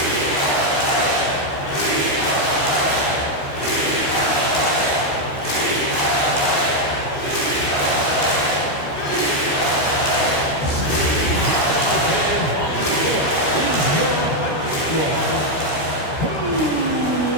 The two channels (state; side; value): late; right; 14 ms